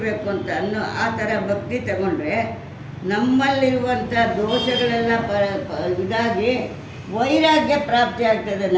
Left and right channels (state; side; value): identical; both; correlation 1.00